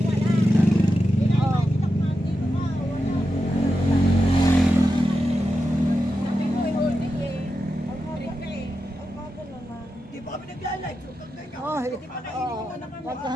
Di ba kami nagla-live? Oh,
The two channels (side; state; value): both; normal; correlation 0.89